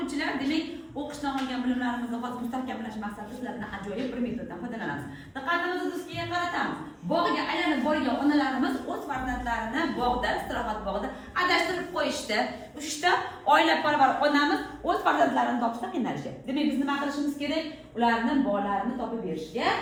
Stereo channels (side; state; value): both; identical; correlation 1.00